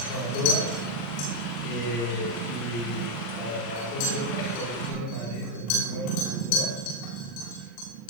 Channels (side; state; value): right; late; 39 ms